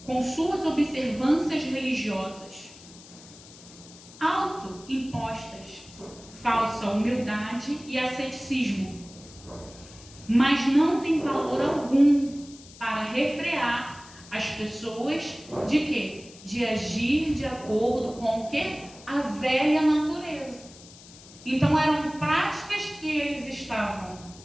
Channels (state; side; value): noise; left; hiss, 20 dB below the sound